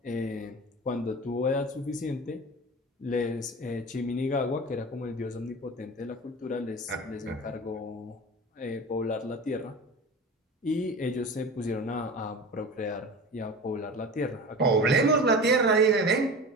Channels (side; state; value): both; normal; correlation 0.33